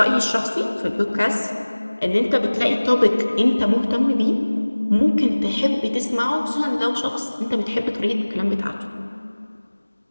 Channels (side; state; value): both; inverted; correlation -1.00